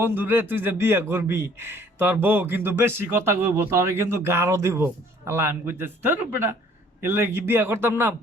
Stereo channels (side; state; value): both; normal; correlation 0.57